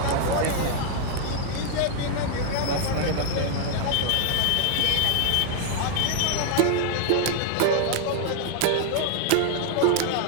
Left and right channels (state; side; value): different; both; correlation 0.00